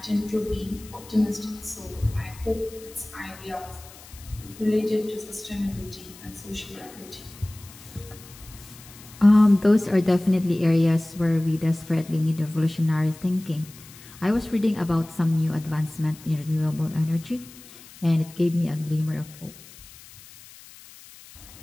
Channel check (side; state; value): left; noise; hiss, 20 dB below the sound